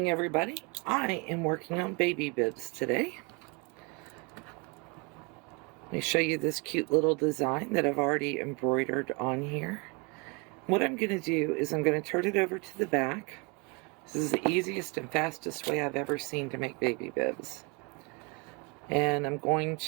everybody. I am working on baby bibs today. Let me show you this cute little design that I've already embroidered on here. What I'm going to do is I'm going to turn it over to the back. This is the easiest and fastest way I've ever seen to make baby bibs. And I'm going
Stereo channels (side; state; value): left; quieter; 28.7 dB